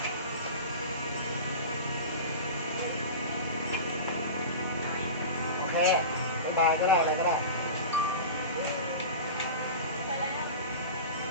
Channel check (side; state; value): both; inverted; correlation -0.30